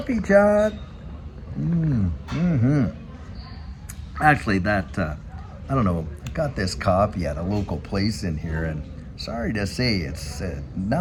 Chat. Mm-hmm. Actually, I don't know, I got this coffee at a local place in here, and sorry to say, it's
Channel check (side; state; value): both; identical; correlation 1.00